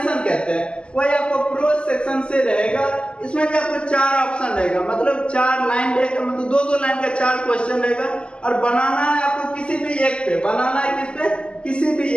कहते हैं। वही आपको प्रोज सेक्शन से रहेगा। इसमें भी आपको 4 ऑप्शन रहेगा, मतलब 4 लाइन रहेगा, मतलब 2-2 लाइन का 4 क्वेश्चन रहेगा और बनाना है आपको किसी भी एक पे, बनाना है किस पे, किसी भी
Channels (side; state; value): right; late; 0.052 ms